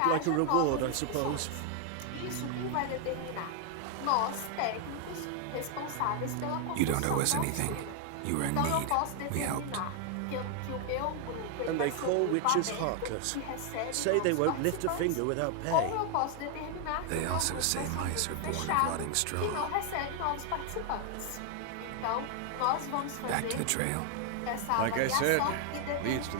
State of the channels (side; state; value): both; different; correlation 0.00